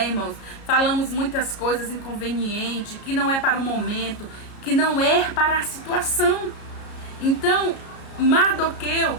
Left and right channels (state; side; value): late; right; 33 ms